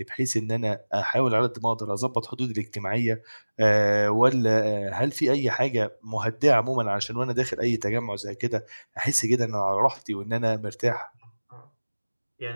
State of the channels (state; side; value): inverted; both; correlation -1.00